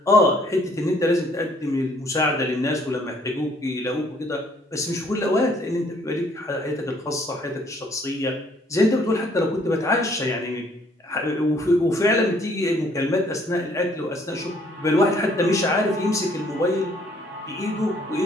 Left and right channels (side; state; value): both; normal; correlation 0.62